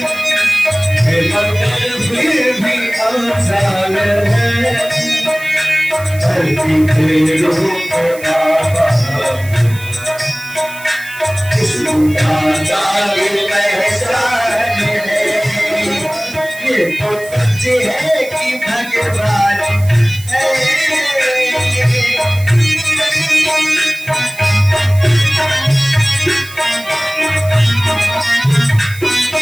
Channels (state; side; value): noise; right; hiss, 17 dB below the sound